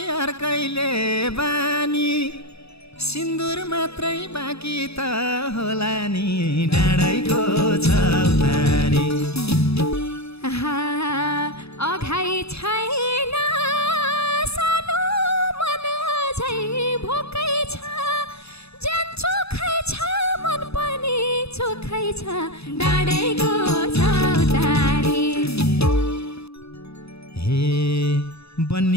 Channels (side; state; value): right; late; 0.79 ms